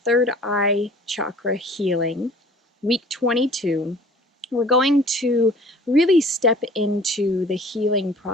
third eye chakra healing, week 22, we're going to really step into the healing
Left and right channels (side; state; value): both; normal; correlation 0.49